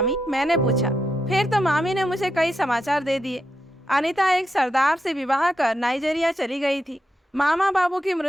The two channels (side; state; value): both; normal; correlation 0.84